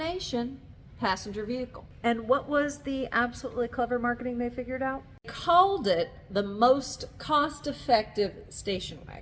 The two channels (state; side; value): identical; both; correlation 1.00